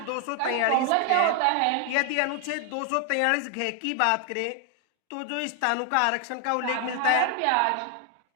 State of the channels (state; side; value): different; both; correlation 0.00